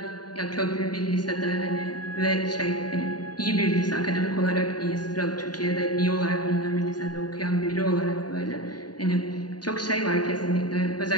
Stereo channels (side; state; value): right; late; 0.70 ms